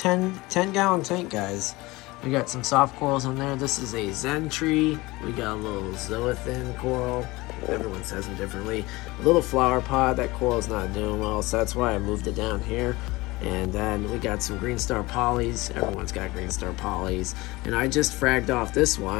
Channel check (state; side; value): quieter; right; 21.4 dB